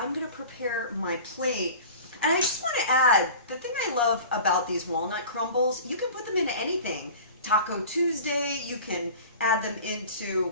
gonna prepare my plate. And I just wanna add, the thing I love about these walnut crumbles, you can put them into anything. Taco Tuesday, you can add them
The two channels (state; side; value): inverted; both; correlation -0.39